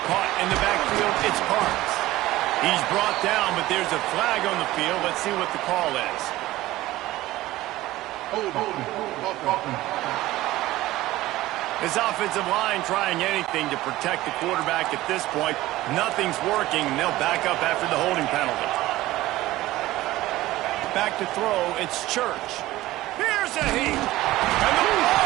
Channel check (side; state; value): left; quieter; 16.8 dB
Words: Caught in the backfield, it's Parks. He's brought down, but there's a flag on the field. Let's see what the call is. His offensive line trying anything to protect the quarterback at this point. Nothing's working, and they'll back up after the holding penalty. Back to throw, it's Church. Here's a heat, and the